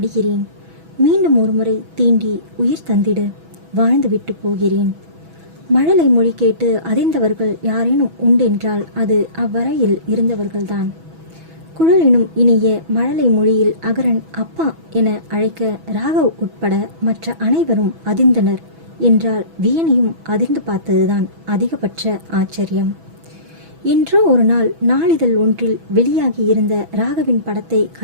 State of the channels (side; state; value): left; late; 6.1 ms